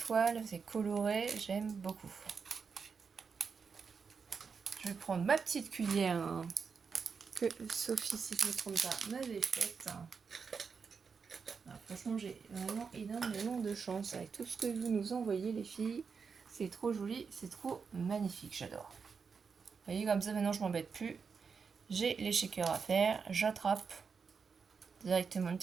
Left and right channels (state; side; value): quieter; left; 5.6 dB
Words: c'est coloré, j'aime beaucoup. Je vais prendre ma petite cuillère hein, que Sophie, si je ne me trompe pas, m'avait faite. Alors, franchement, j'ai vraiment énormément de chance avec tout ce que vous nous envoyez, les filles. C'est trop joli, c'est trop magnifique, j'adore. Vous voyez, comme ça, maintenant, je m'embête plus. J'ai les shakers à faire, j'attrape directement une